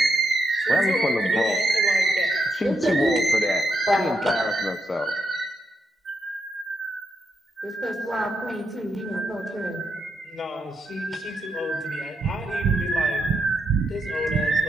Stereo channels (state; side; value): normal; both; correlation 0.81